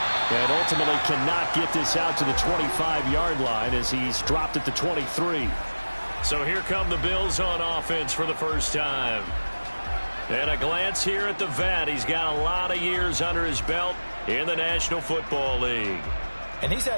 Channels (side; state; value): both; inverted; correlation -1.00